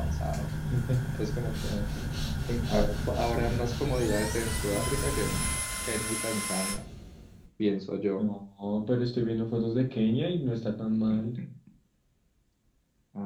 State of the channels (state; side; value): identical; both; correlation 1.00